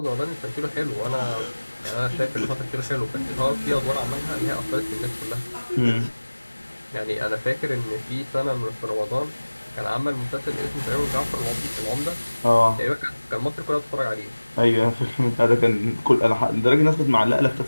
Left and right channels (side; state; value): both; inverted; correlation -1.00